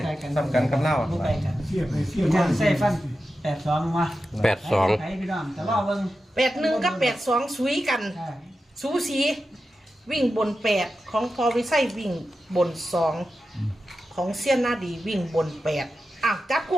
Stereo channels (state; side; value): normal; both; correlation 0.91